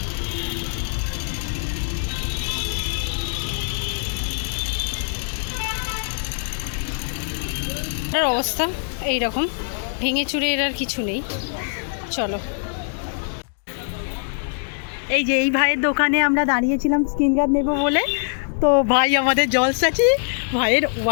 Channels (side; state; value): right; silent; digital silence